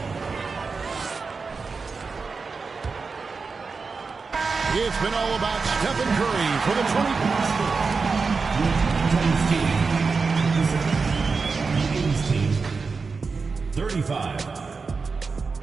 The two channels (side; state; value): left; quieter; 4.6 dB